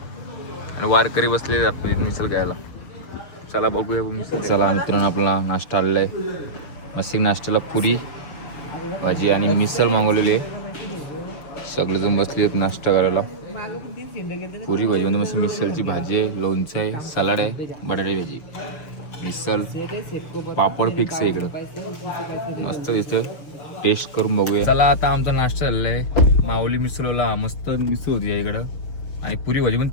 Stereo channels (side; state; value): right; late; 6.8 ms